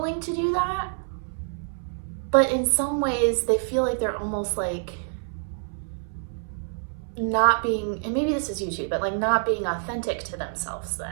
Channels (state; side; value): silent; left; 61 dB below the other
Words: to do that. But in some ways they feel like they're almost like not being, and maybe this is you too, but like not being authentic to themselves